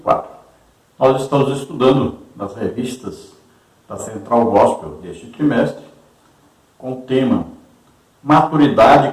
Nós estamos estudando nas revistas da Central Gospel deste trimestre, com o tema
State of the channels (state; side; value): identical; both; correlation 1.00